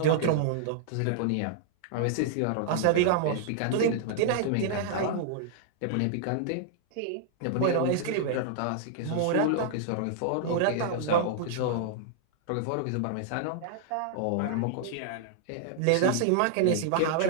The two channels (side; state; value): both; different; correlation -0.01